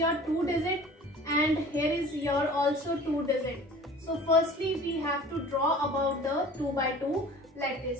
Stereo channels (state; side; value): normal; both; correlation 0.44